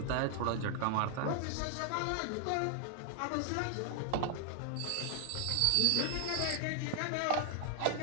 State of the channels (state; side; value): different; both; correlation 0.00